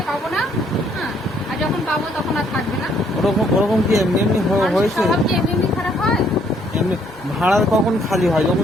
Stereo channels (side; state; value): both; normal; correlation 0.67